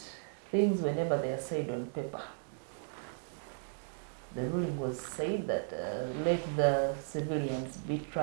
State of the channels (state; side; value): silent; left; digital silence